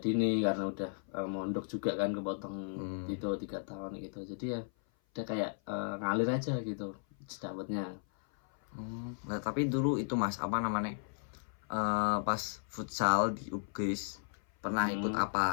karena udah mondok juga kan, kepotong itu 3 tahun gitu. Jadi ya udah kayak ngalir aja gitu dapatnya. Nah tapi dulu itu mas apa namanya pas futsal di UPGRIS pernah ikut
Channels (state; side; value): silent; right; 54 dB below the other